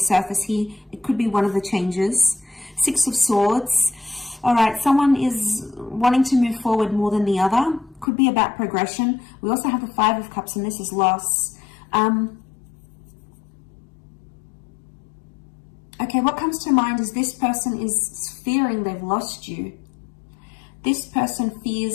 here. It could be one of the changes. Six of Swords. All right, someone is wanting to move forward more than the other. Could be about progression. We also have the Five of Cups, and this is loss. Okay, what comes to mind is this person is fearing they've lost you. This person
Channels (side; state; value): right; drops out; at 8.1 s